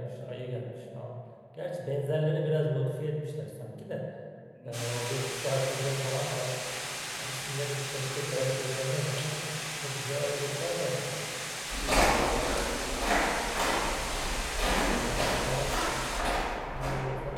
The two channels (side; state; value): both; identical; correlation 1.00